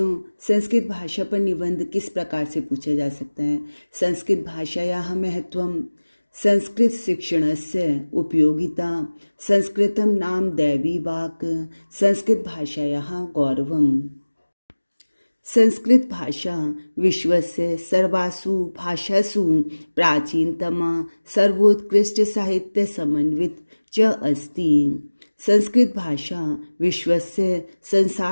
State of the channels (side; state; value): both; inverted; correlation -1.00